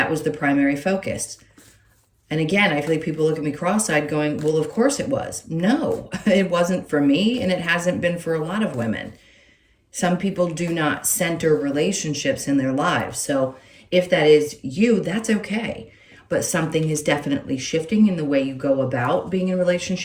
was the primary focus. And again, I feel like people look at me cross-eyed going, well, of course it was. No, it wasn't for me, and it hasn't been for a lot of women. Some people do not center relationships in their lives. So if that is you, that's okay. But something is definitely shifting in the way you go about being in a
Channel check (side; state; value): both; identical; correlation 1.00